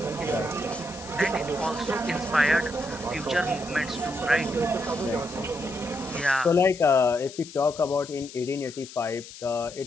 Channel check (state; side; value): noise; left; hiss, 15 dB below the sound